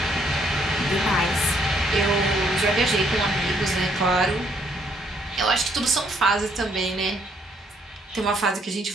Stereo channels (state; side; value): normal; both; correlation 0.69